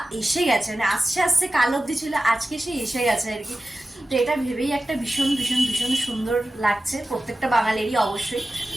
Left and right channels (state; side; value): normal; both; correlation 0.94